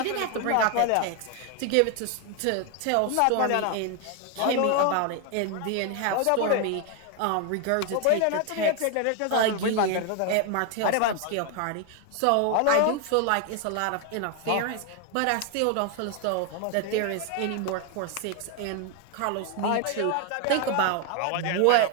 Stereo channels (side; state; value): both; different; correlation 0.01